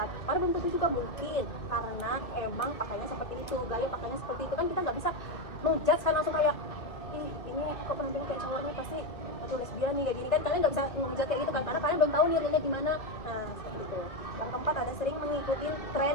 padahal belum tentu juga, mungkin karena emang pakainya seperti itu, gaya pakainya seperti itu, kan kita nggak bisa ngejudge kan langsung kayak ini kok penampilan kayak cowoknya pasti atau lesbian nih kayak gini kan, kalian nggak bisa ngejudge kayak gitu kan, karena kalian belum tahu realnya gimana. Nah seperti itu. Yang keempat ada sering mengikuti tren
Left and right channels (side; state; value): right; late; 2.2 ms